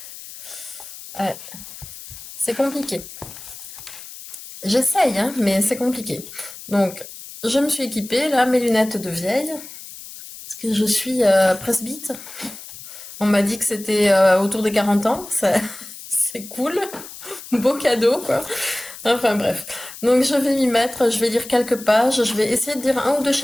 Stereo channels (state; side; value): noise; left; hiss, 14 dB below the sound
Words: Ouais, c'est compliqué. J'essaye, hein, mais c'est compliqué. Donc, je me suis équipée, là, mes lunettes de vieille, parce que je suis presbyte. On m'a dit que c'était autour des 40 ans, c'est cool, beau cadeau, quoi. Enfin bref. Donc je vais m'y mettre, je vais lire quelques pages, je vais essayer de lire un ou deux